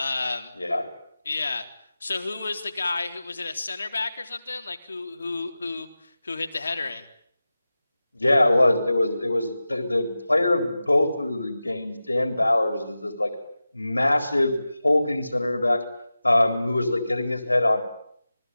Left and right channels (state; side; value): inverted; both; correlation -0.94